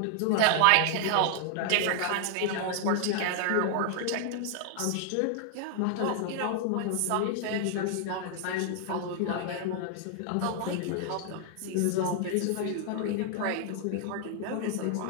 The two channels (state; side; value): different; both; correlation 0.00